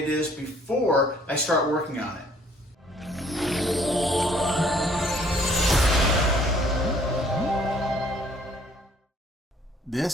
is before I start working on it.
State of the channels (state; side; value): normal; both; correlation 0.60